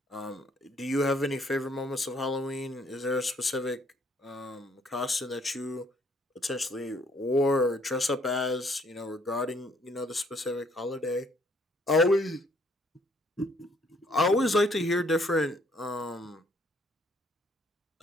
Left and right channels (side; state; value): both; normal; correlation 0.65